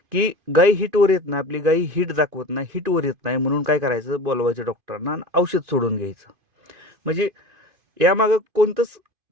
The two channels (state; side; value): late; left; 2.5 ms